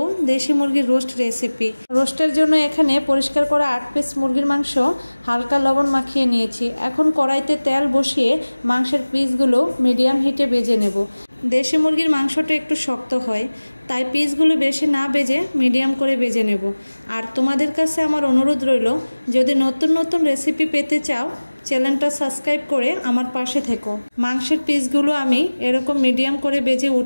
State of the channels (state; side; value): inverted; both; correlation -1.00